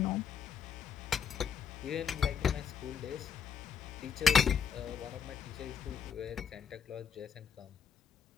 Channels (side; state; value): right; quieter; 7.4 dB